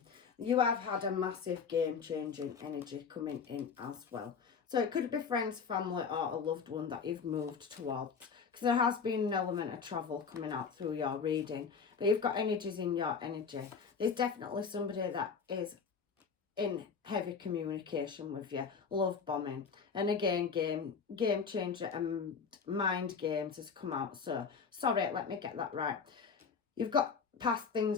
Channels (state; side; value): quieter; right; 5.8 dB